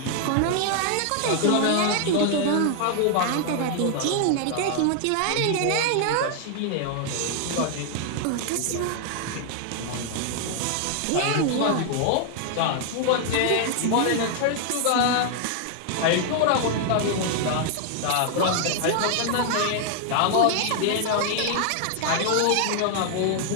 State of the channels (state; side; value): different; both; correlation 0.00